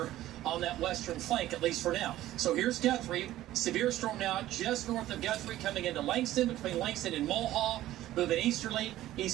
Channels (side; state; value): left; quieter; 14.5 dB